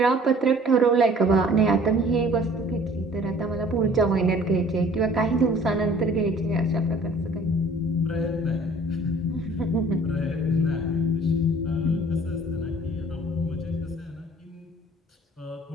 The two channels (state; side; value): normal; both; correlation 0.52